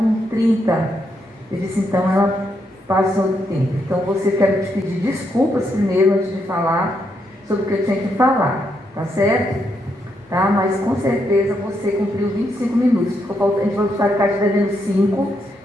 30. Eu disse, então ela passou do tempo. Então, quero te pedir desculpas primeiro, antes de falar sobre o que eu tinha que falar, tá certo? Tá? Mas com certeza você cumpriu 25 minutos. A gente vai ficar te devendo 5,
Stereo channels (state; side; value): normal; both; correlation 0.79